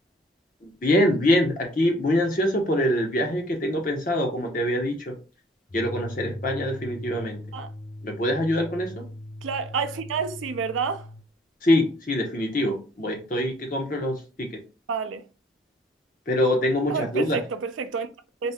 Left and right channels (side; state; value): both; normal; correlation 0.57